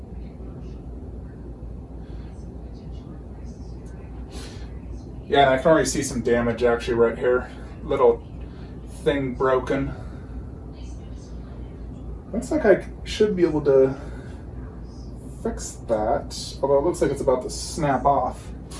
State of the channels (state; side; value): identical; both; correlation 1.00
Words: Yeah, and I can already see some damage actually right here. Little thing broken. Looks like I should be able to fix that, although it looks like it's about to snap off.